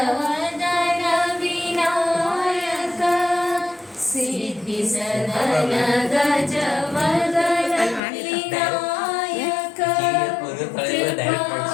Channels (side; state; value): right; drops out; at 8.0 s